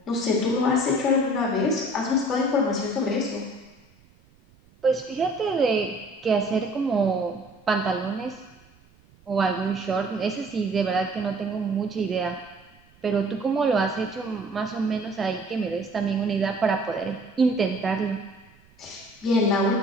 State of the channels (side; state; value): right; noise; rumble, 29 dB below the sound